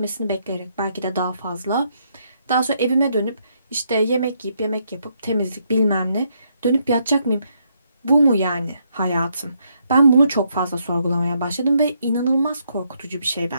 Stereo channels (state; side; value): inverted; both; correlation -0.75